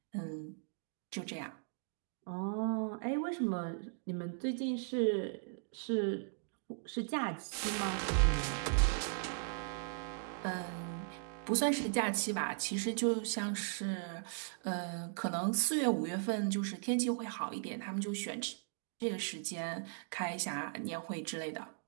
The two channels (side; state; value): left; silent; digital silence